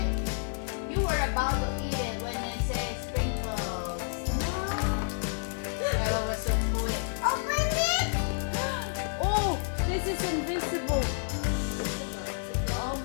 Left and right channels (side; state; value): right; silent; digital silence